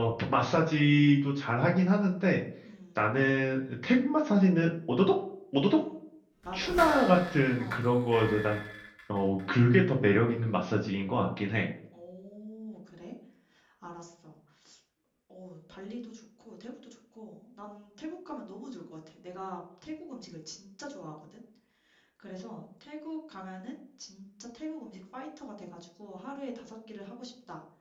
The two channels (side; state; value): both; identical; correlation 1.00